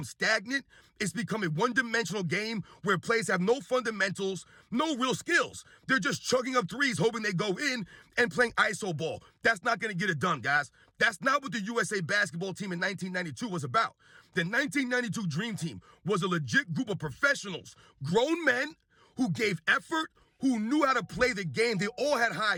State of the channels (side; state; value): both; identical; correlation 1.00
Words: stagnant. It's become a one-dimensional game where players have no fundamentals, no real skills. They're just chugging up threes, hoping they go in and playing iso ball. That's not going to get it done, guys. That's not what the USA basketball team in 1992 was about. The 1992 Dream Team was a legit group of professionals, grown men who gave effort, who knew how to play the game. They all had high